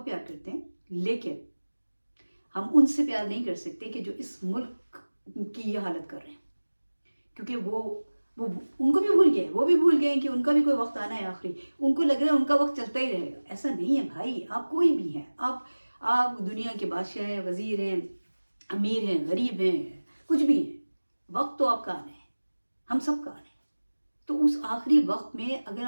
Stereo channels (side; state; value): both; inverted; correlation -1.00